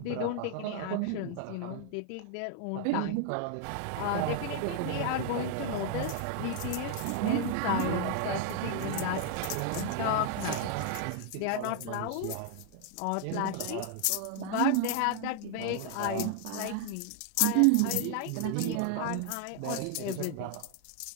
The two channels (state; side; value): different; both; correlation 0.00